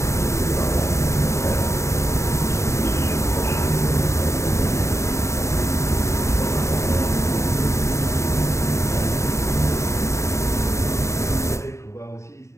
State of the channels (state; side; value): late; right; 0.14 ms